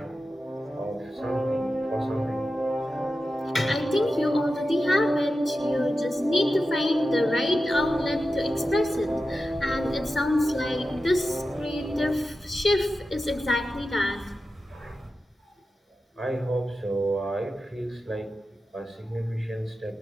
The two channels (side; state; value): both; normal; correlation 0.92